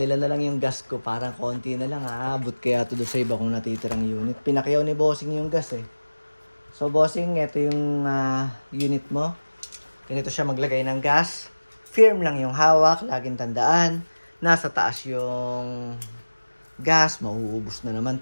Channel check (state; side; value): inverted; both; correlation -1.00